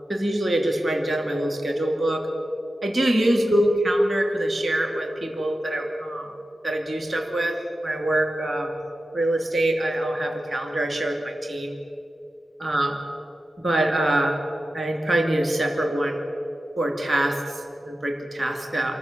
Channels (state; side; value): normal; both; correlation 0.93